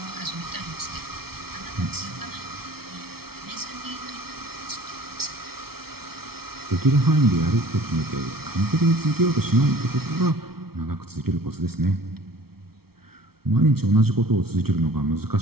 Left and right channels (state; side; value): late; left; 0.95 ms